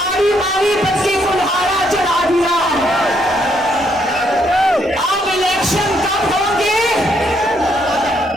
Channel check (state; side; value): normal; both; correlation 0.72